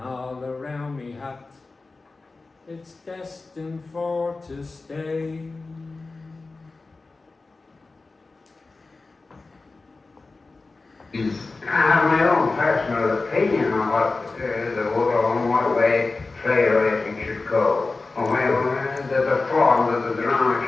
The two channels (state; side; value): quieter; right; 3.7 dB